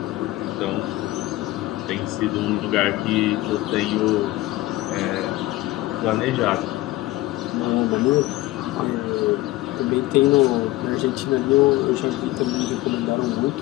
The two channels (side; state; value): right; quieter; 17.7 dB